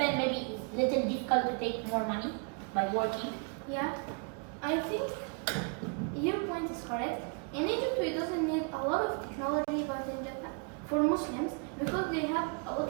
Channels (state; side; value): quieter; left; 36.5 dB